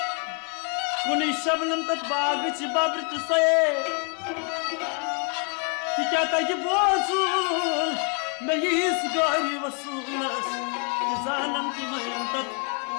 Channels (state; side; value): quieter; right; 38.1 dB